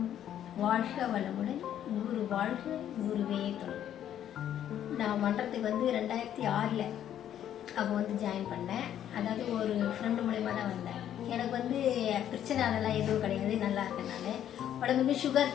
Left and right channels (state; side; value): quieter; right; 10.6 dB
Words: வாழ்க வளமுடன், குரு வாழ்க, குருவே துணை. நான் மன்றத்துக்கு 2006 அப்போ ஜாயின் பண்ணேன். அதாவது ஒரு ஃப்ரெண்டு மூலயமா தான் வந்தேன். எனக்கு பிரச்சனை அதெல்லாம் எதுவும் கிடையாது, நல்லா இருக்கேன். நான் உடம்பு சுகர்